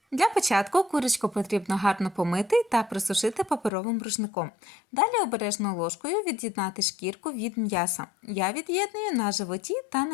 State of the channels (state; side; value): drops out; right; at 3.7 s